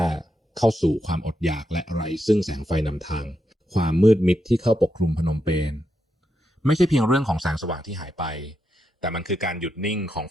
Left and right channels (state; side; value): normal; both; correlation 0.84